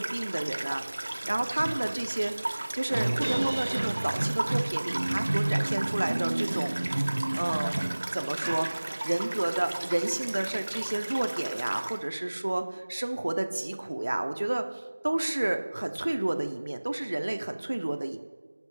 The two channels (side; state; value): both; inverted; correlation -1.00